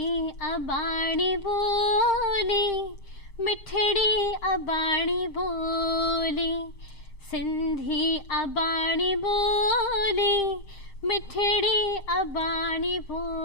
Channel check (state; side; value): late; right; 7.5 ms